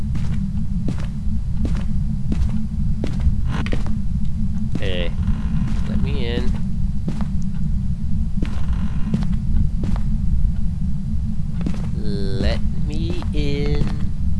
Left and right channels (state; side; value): identical; both; correlation 1.00